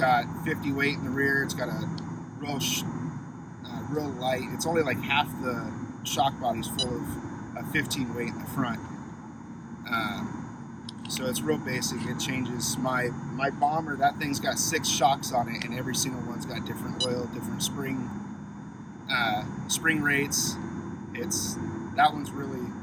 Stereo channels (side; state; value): both; identical; correlation 1.00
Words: 50 weight in the rear. It's got a real light. It's only like half the shock body's full of a 15 weight in the front. So it's real basic. It changes. My bomber, that thing's got 6 shocks on it, and every single one's got different oil, different spring rates. that one's